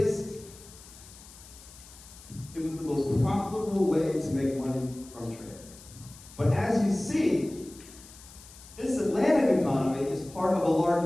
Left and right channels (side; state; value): left; noise; hiss, 20 dB below the sound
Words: it was the most profitable way to make money from trade. But as you see, this Atlantic economy is part of a